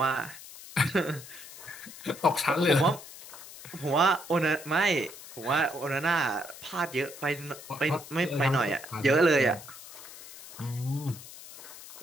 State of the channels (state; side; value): noise; left; hiss, 15 dB below the sound